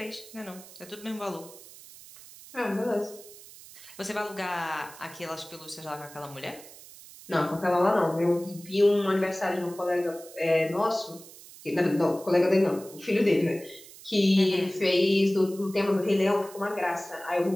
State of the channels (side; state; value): right; noise; hiss, 19 dB below the sound